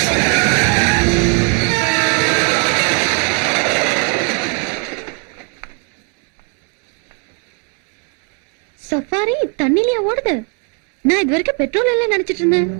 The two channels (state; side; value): quieter; left; 38.0 dB